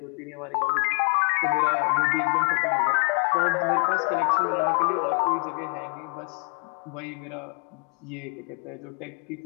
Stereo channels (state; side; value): quieter; right; 38.5 dB